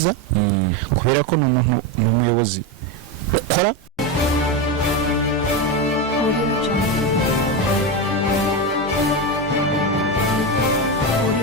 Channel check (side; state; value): both; normal; correlation 0.14